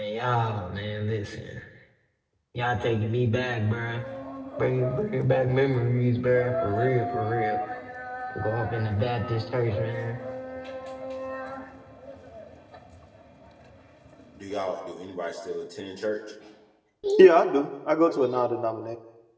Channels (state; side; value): identical; both; correlation 1.00